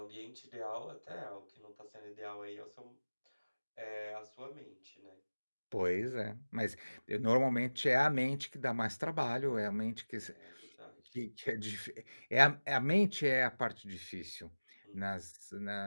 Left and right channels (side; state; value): both; inverted; correlation -1.00